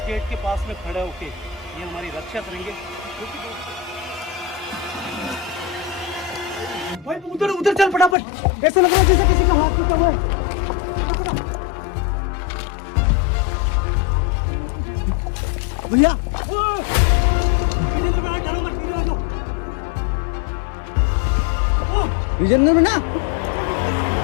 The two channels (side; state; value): right; drops out; at 8.2 s